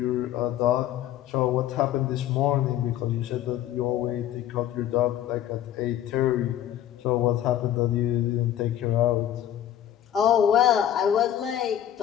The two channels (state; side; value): quieter; right; 11.3 dB